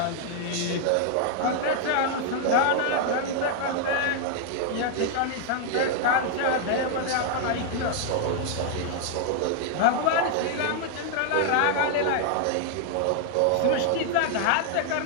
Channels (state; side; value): different; both; correlation 0.00